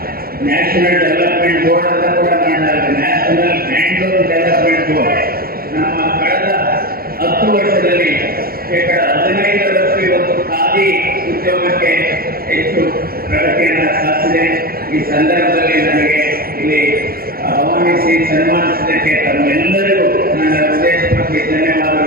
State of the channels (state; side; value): late; left; 0.44 ms